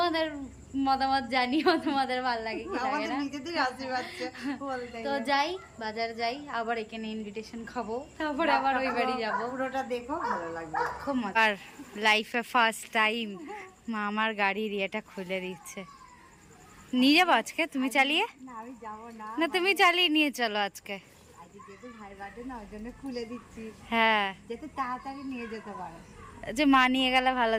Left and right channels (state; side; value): identical; both; correlation 1.00